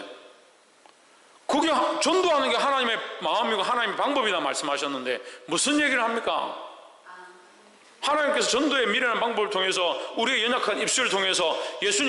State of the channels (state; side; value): identical; both; correlation 1.00